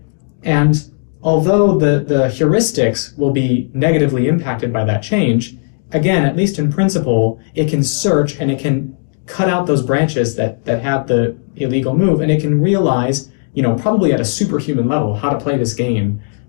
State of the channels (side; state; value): right; silent; 63 dB below the other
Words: And although the heuristics will be negatively impacted by that change, again, at least in principle, it can search and it can cut out those branches that have the illegal move, and it can realize, probably at a superhuman level, how to play this game,